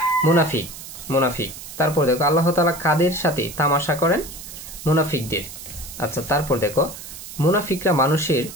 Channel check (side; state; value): right; noise; hiss, 13 dB below the sound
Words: মুনাফিক। তারপর দেখো আল্লাহ তাআলা কাদের সাথে তামাশা করেন? মুনাফিকদের। আচ্ছা তারপর দেখো মুনাফিকরা মানুষের